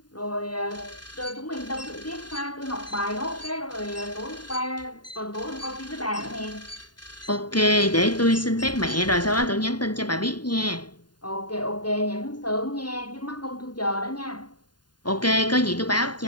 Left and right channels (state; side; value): late; right; 0.70 ms